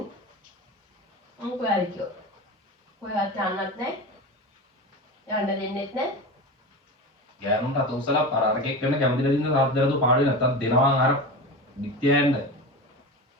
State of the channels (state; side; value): normal; both; correlation 0.27